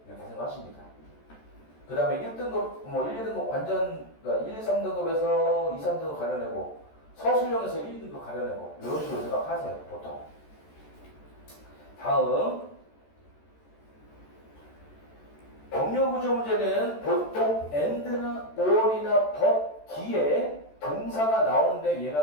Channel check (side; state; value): right; late; 14 ms